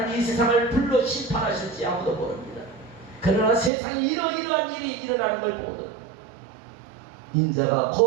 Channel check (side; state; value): left; drops out; at 3.7 s